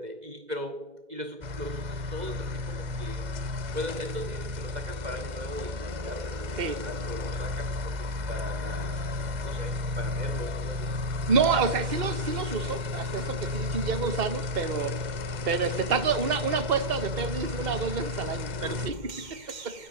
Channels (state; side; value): late; left; 2.1 ms